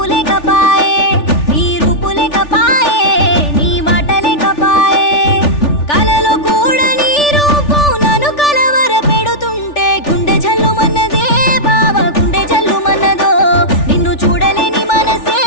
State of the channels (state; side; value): late; right; 3.4 ms